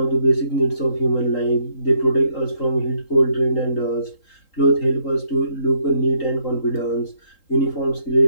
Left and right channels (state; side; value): late; right; 3.8 ms